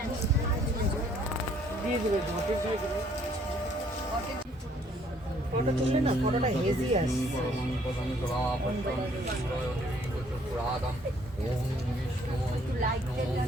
দিয়ে দিবে, ঘটে দিয়ে দিবে। ফটো তুললে না, ফটোটা হেজি আসছে।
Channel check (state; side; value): normal; both; correlation 0.63